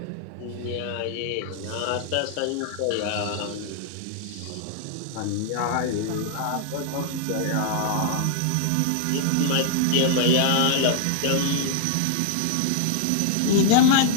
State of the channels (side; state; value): both; different; correlation 0.00